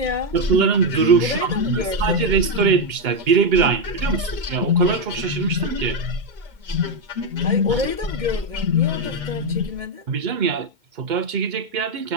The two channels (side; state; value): left; late; 2.1 ms